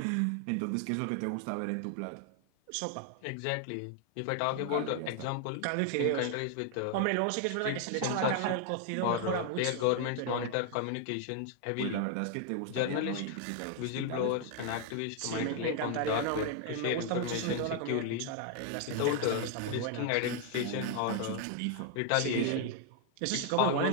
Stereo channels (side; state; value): both; different; correlation 0.00